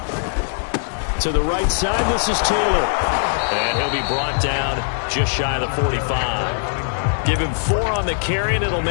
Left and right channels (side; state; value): right; silent; digital silence